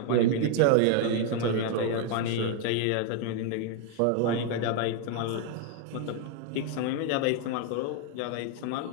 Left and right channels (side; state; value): both; different; correlation 0.01